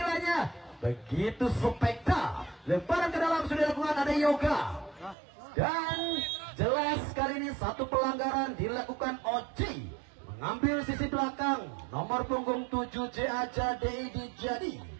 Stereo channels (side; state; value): left; drops out; at 5.2 s